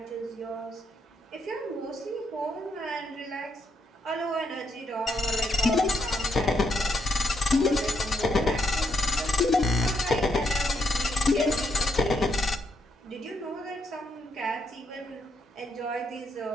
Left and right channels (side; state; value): both; normal; correlation 0.77